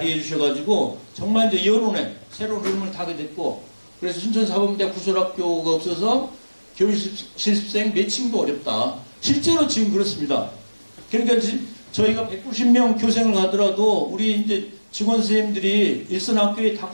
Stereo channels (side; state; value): both; inverted; correlation -1.00